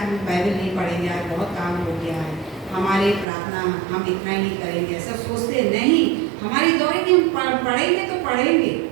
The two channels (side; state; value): left; drops out; at 3.2 s